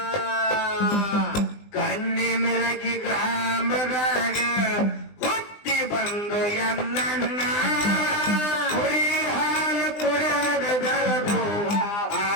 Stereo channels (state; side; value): late; right; 20 ms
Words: ಕಣ್ಣಿ ಮಿರಗಿ ಗ್ರಾಮದಾಗ ಹುಟ್ಟಿ ಬಂದು ಎಲ್ಲನ್ನ ಕುರಿ ಹಾಲು ಕುಡದ ಬೆಳಗು